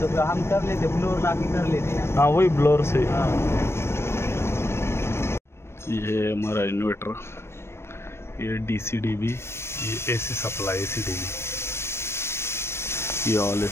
तो हम कर लेते, ब्लोर लाके कर लेते हैं। हाँ, वही ब्लोर से। हाँ। ये हमारा इन्वर्टर, ये DC-DB, ये AC सप्लाई, AC-DB, ये ऑल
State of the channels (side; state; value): right; late; 0.12 ms